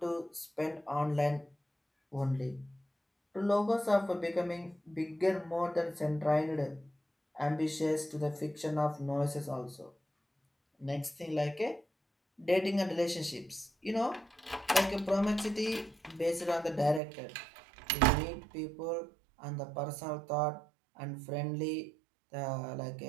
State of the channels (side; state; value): left; drops out; at 17.0 s